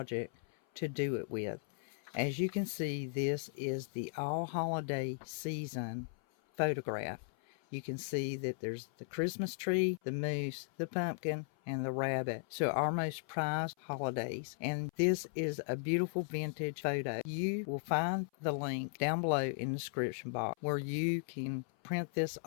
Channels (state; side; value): silent; right; 53 dB below the other